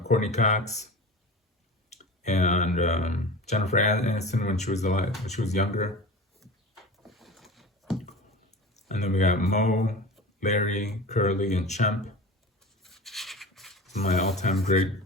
Cox, and Jennifer Aniston when she was alive, when she was younger. And then we got Mo, Larry, Curly, and Chemp. My all-time great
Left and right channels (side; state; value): both; normal; correlation 0.33